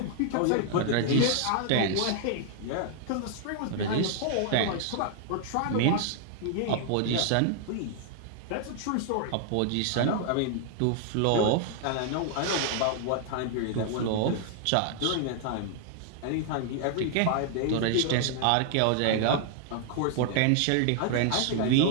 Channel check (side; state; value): both; different; correlation 0.00